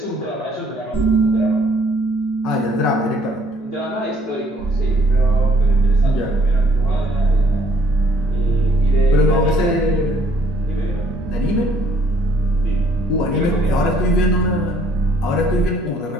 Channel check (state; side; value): normal; both; correlation 0.63